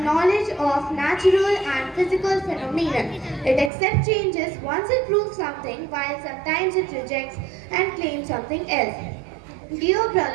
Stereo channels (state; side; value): drops out; left; at 3.7 s